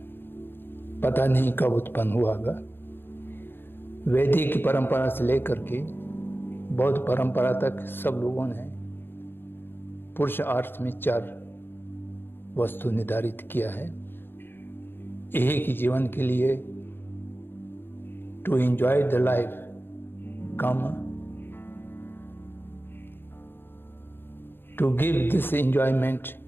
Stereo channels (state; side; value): late; right; 0.10 ms